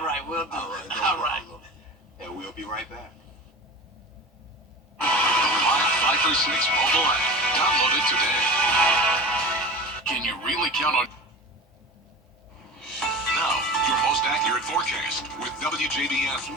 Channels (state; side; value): normal; both; correlation 0.34